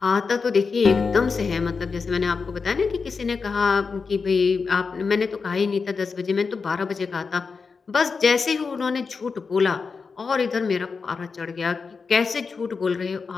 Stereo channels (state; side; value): quieter; right; 5.0 dB